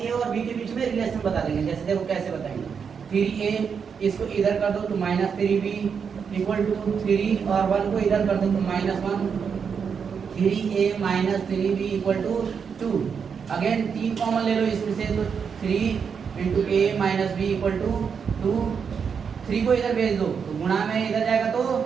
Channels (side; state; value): left; quieter; 6.5 dB